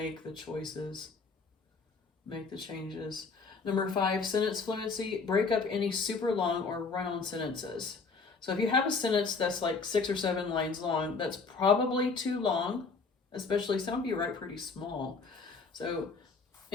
the choices, make the changes. Number 5, sentence fluency. Break up any super long or run-on sentences. So if you have a sentence that's like 6 or 7 lines long, that's probably too long, especially some of you write pretty small. So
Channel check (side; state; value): right; quieter; 4.5 dB